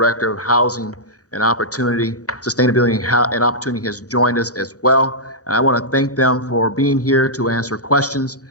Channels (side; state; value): both; normal; correlation -0.10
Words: of Housing and Opportunity, Sustainability and Opportunity, has joined us as well. And I want to thank them for being here to answer questions